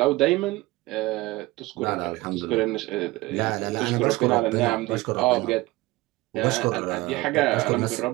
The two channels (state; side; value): quieter; left; 20.1 dB